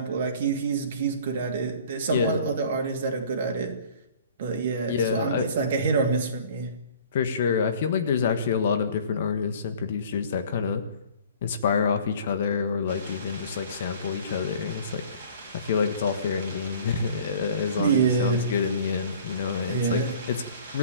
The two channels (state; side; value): inverted; both; correlation -0.48